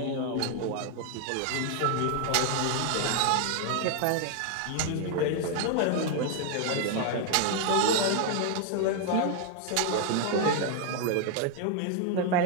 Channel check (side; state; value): both; different; correlation 0.00